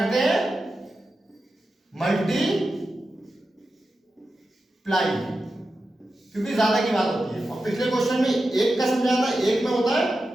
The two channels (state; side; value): normal; both; correlation 0.91